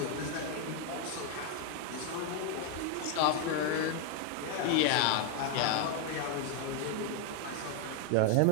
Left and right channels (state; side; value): different; both; correlation 0.01